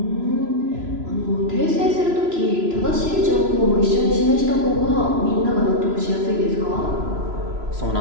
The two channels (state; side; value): late; left; 3.0 ms